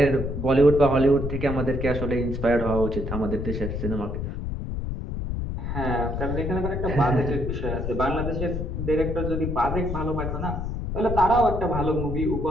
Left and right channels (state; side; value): noise; left; rumble, 4 dB below the sound